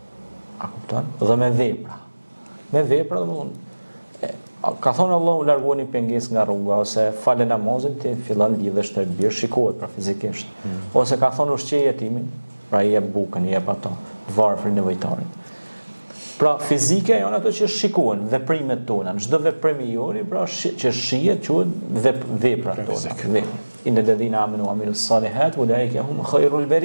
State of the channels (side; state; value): both; inverted; correlation -1.00